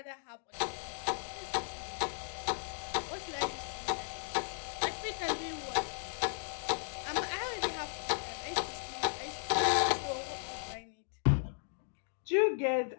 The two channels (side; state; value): right; silent; digital silence